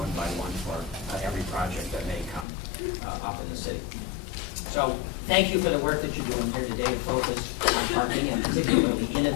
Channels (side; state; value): right; drops out; at 2.5 s